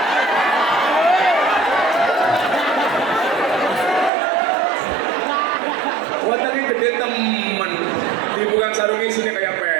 Wataknya gede temen, dibuka sarungnya sini kayak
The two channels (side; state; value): left; drops out; at 4.1 s